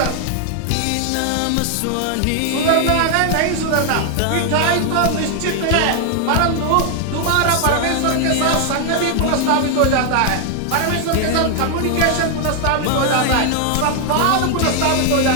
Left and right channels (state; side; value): different; both; correlation 0.00